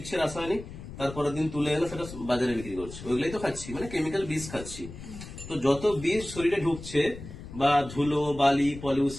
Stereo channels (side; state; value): left; noise; rumble, 13 dB below the sound